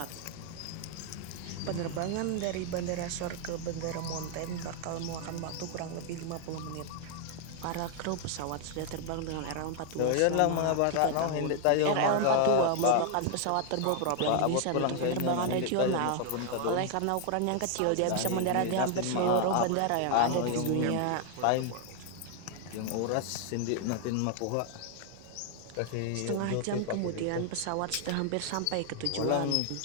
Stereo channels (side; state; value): both; different; correlation 0.00